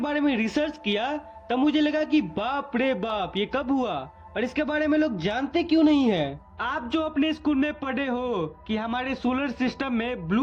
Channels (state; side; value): identical; both; correlation 1.00